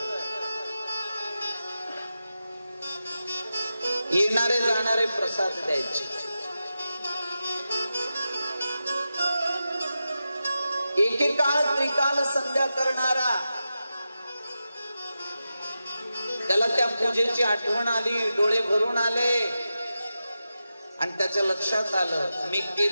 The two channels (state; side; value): inverted; both; correlation -0.91